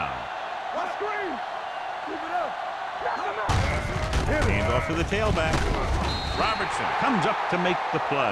Let's screen. Keep it up. Hand off to the tailback. Robertson comes up to make the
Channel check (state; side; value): identical; both; correlation 1.00